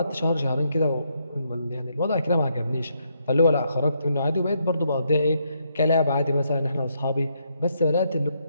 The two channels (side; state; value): both; inverted; correlation -0.76